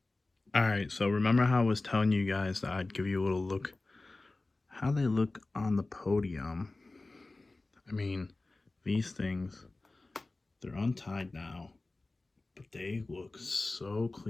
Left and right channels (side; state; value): right; quieter; 3.2 dB